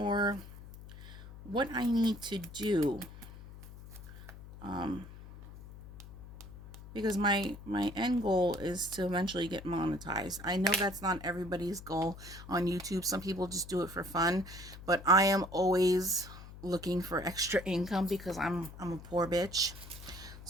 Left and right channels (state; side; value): noise; left; hum, 15 dB below the sound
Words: what I need to do. Because my end goal is to eventually get monetized. I know that's not everybody's goal on YouTube. Some people just do it for fun, but I am always looking for extra income because I'm a poor bitch.